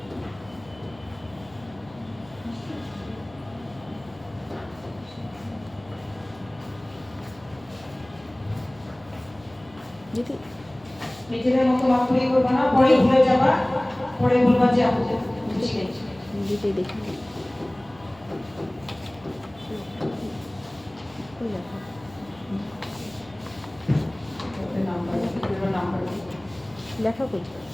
যদি নিজেদের মতো মাত্রই করবা না, পরে ভুলে যাবা, পরে বলবা যে আমি বুঝি গেছি। নিজেই দেখি লেখা কই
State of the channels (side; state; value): left; noise; hum, 24 dB below the sound